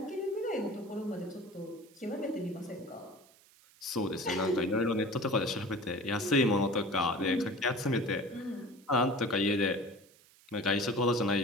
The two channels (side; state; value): right; noise; hiss, 27 dB below the sound